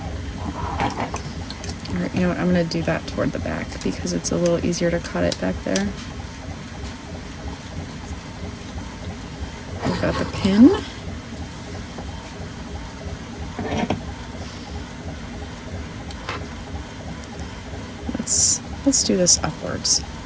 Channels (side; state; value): both; identical; correlation 1.00